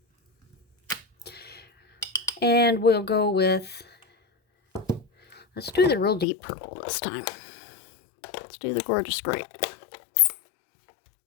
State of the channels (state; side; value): drops out; right; at 6.2 s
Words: And we'll go with... let's do the real deep purple this time. Let's do the Gorgeous Grape.